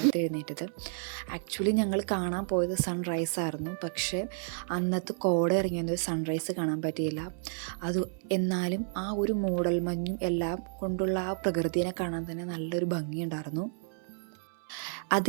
എഴുന്നേറ്റത്. ആക്ച്വലി ഞങ്ങൾ കാണാൻ പോയത് സൺറൈസ് ആയിരുന്നു. പക്ഷേ അന്നത്തെ കോട ഇറങ്ങിയൊന്നും സൺറൈസ് കാണാൻ പറ്റിയില്ല. എന്നാലും ആ ഒരു മൂടൽമഞ്ഞും എല്ലാം കൊണ്ടുള്ള ആ പ്രകൃതിയെ കാണാൻ തന്നെ നല്ലൊരു ഭംഗിയുണ്ടായിരുന്നു. അത്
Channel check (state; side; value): silent; left; 57 dB below the other